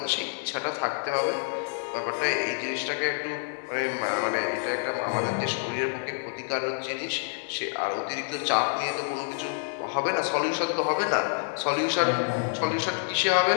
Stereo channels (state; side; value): silent; right; 60 dB below the other